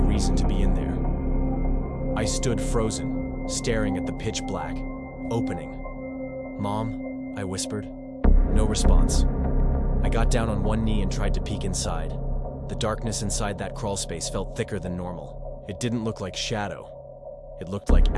to be in there. I stood frozen, staring at the pitch black, opening. "Mom?" I whispered. No response. I got down on one knee and tried to peek inside. The darkness inside that crawlspace felt thicker than normal. It didn't look like shadow. It looked like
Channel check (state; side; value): identical; both; correlation 1.00